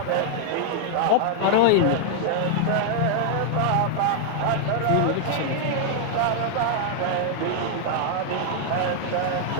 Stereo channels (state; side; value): different; both; correlation 0.00